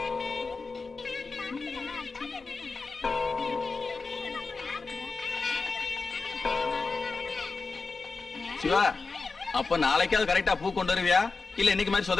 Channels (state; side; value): quieter; right; 4.2 dB